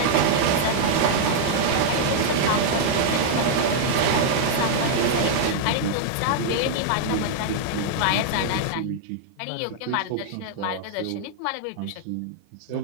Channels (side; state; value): both; different; correlation -0.01